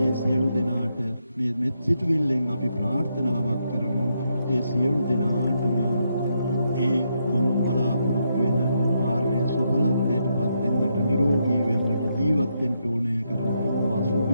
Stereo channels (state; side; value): inverted; both; correlation -0.79